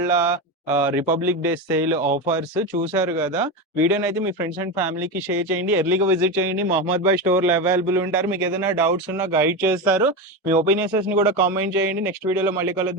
రిపబ్లిక్ డే సేల్ ఆఫర్స్ చూసారు కదా. వీడియోని అయితే మీ ఫ్రెండ్స్ అండ్ ఫ్యామిలీకి షేర్ చేయండి. ఎర్లీగా విజిట్ చేయండి. మహమ్మద్ భాయ్ స్టోర్ లో అవైలబుల్ ఉంటారు. మీకు ఏదైనా డౌట్స్ ఉన్నా గైడ్ చేస్తారు. మీ ఒపీనియన్స్ ని కూడా కామెంట్ చేయండి. నెక్స్ట్ వీడియోలో మళ్ళీ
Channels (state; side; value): normal; both; correlation 0.17